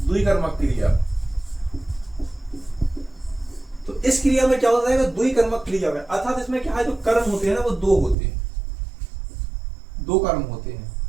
द्विकर्मक क्रिया, तो इस क्रिया में क्या होता है, द्विकर्मक क्रिया में, अर्थात इसमें क्या है, जो कर्म होते हैं ना वो दो होते हैं, दो कर्म होते हैं।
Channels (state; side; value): drops out; left; at 8.2 s